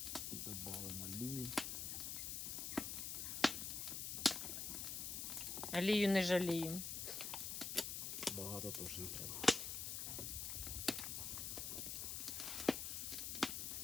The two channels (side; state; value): left; noise; hiss, 3 dB below the sound